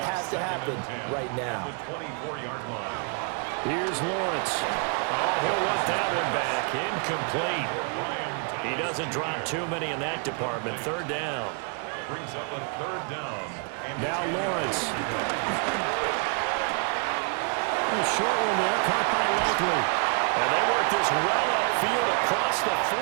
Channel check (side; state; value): left; quieter; 38.7 dB